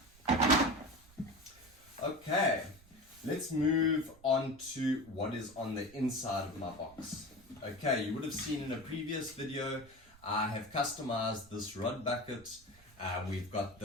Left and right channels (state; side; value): noise; right; rumble, 26 dB below the sound